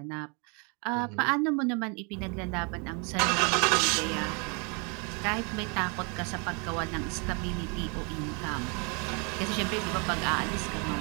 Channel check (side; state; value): left; quieter; 33.6 dB